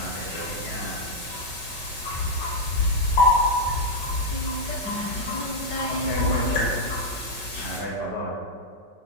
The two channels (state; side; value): late; right; 5.3 ms